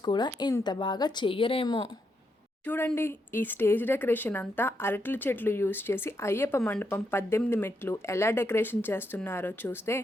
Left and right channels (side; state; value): both; normal; correlation 0.81